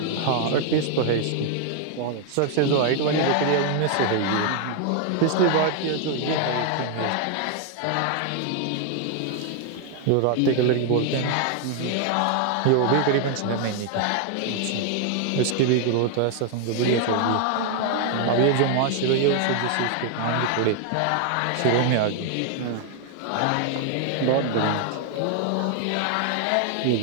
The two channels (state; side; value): different; both; correlation 0.00